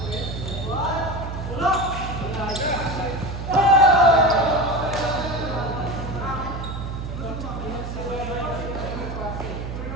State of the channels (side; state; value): right; noise; hum, 6 dB below the sound